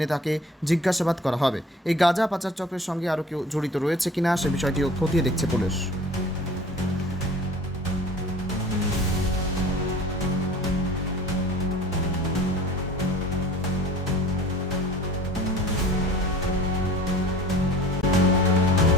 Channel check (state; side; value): normal; both; correlation 0.45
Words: তাকে জিজ্ঞাসাবাদ করা হবে। এই গাঁজা পাচার চক্রের সঙ্গে আরও কেউ জড়িত রয়েছে কিনা সে বিষয়টিও খতিয়ে দেখছে পুলিশ।